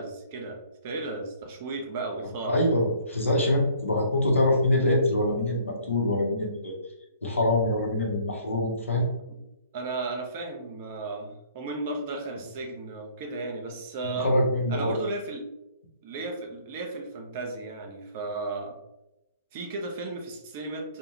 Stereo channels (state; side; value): inverted; both; correlation -0.57